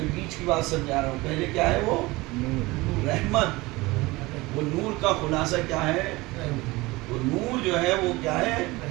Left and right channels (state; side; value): quieter; left; 21.6 dB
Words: بیچ کی بات سمجھا رہا ہوں. پہلے کیا ہے وہ؟ رحمت. وہ نور کا خلاصہ کیا ہے؟ وہ نور جو ہے وہ کیا ہے؟